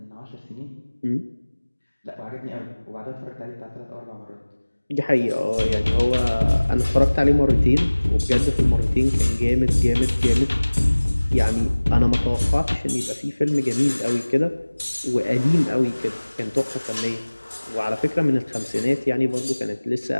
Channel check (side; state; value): both; inverted; correlation -1.00